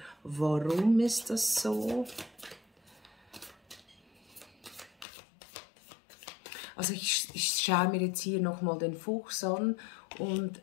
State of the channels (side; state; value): right; drops out; at 5.1 s